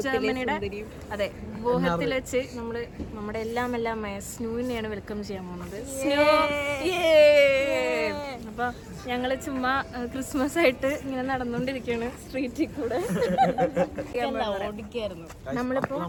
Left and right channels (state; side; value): identical; both; correlation 1.00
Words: ജർമ്മനിയുടെ അതെ ബോഹത്തിൽ വെച്ച് നമ്മുടെ എല്ലാം സ്നൂവിനെയാണ് വെൽക്കം ചെയ്യാൻ പോകുന്നത്. അപ്പോൾ ഞങ്ങൾ ചുമ്മാ ക്രിസ്മസ് ആയിട്ട് ഇങ്ങനെ നടന്നുകൊണ്ടിരിക്കുകയാണ് സ്ട്രീറ്റിൽ കൂടെ. നമ്മളിപ്പോ